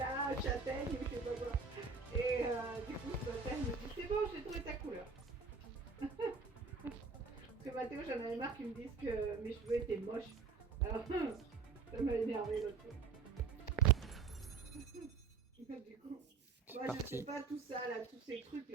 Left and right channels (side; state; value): left; quieter; 5.1 dB